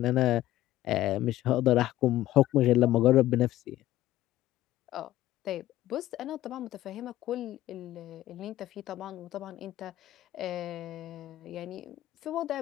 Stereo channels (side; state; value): right; quieter; 14.8 dB